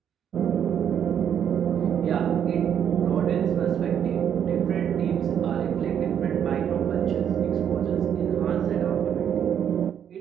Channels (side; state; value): left; quieter; 8.9 dB